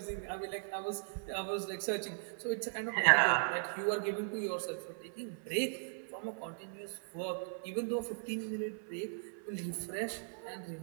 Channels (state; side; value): silent; left; 53 dB below the other